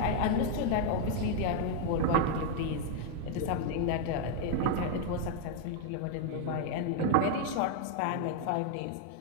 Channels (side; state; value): both; different; correlation 0.00